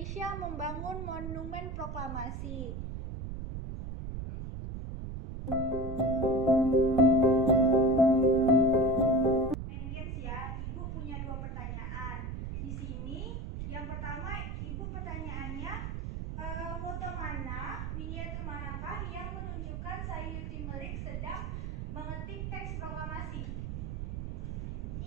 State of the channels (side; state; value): right; noise; rumble, 5 dB below the sound